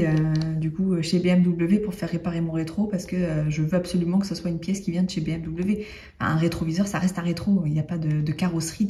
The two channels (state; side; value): identical; both; correlation 1.00